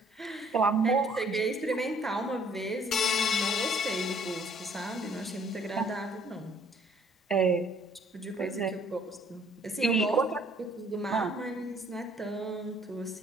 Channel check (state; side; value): normal; both; correlation 0.60